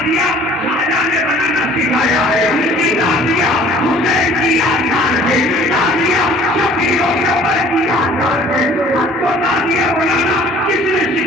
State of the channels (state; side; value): normal; both; correlation 0.52